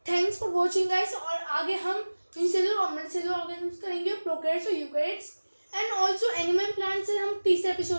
Thanks for watching guys. और आगे हम यूनिसेलुलर और मल्टीसेलुलर ऑर्गेनिज्म्स करेंगे, प्रोकैरियोट्स और eukaryotes, and also animal plants हम तीसरे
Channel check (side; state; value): both; inverted; correlation -1.00